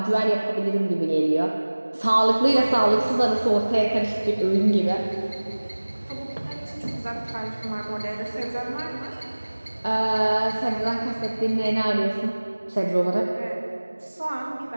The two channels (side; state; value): both; inverted; correlation -1.00